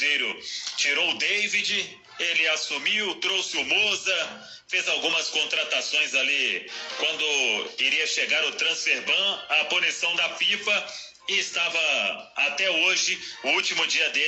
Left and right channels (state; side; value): identical; both; correlation 1.00